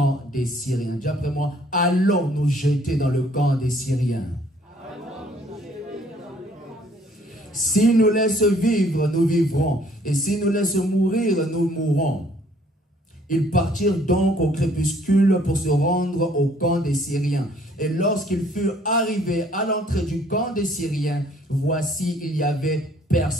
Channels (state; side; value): normal; both; correlation 0.61